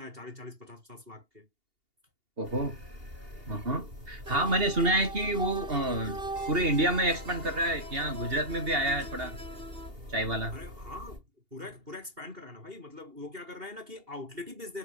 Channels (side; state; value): left; late; 2.8 ms